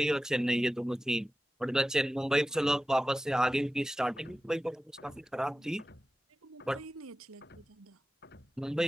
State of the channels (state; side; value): normal; both; correlation 0.95